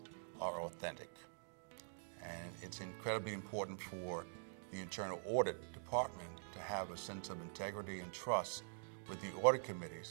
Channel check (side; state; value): left; silent; digital silence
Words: are authentic. And it's incredibly important for the internal audit department to have a sense of integrity and trust with the audit committee